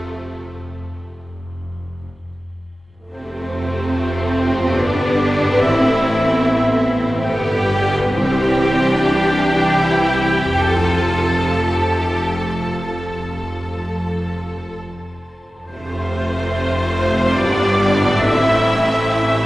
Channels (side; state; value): both; normal; correlation 0.95